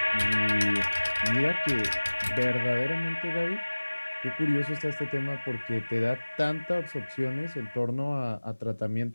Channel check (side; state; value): both; inverted; correlation -1.00